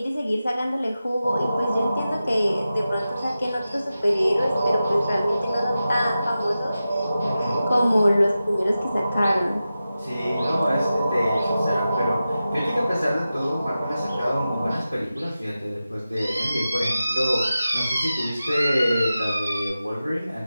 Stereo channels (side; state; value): both; inverted; correlation -0.93